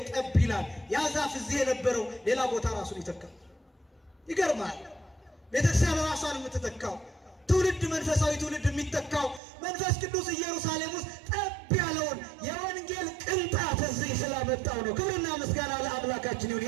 ጠብ ይላል። ያ ዛፍ እዚህ የነበረው ሌላ ቦታ ራሱን ይተካል። ይገርማል። ቤተክርስቲያን ራሷን የምትተካው ትውልድ መንፈሳዊ ትውልድ የሚተካው መንፈስ ቅዱስ ኢየሩሳሌም ውስጥ ጠብ ያለውን የወንጌል ቅንጣት እዚህ ስላመጣው ነው። ክብርና ምስጋና ለአምላካችን ይሁን።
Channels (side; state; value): left; drops out; at 9.4 s